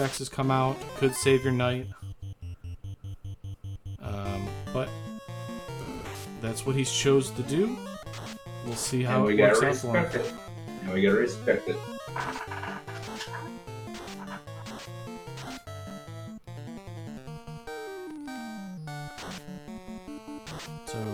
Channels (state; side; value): identical; both; correlation 1.00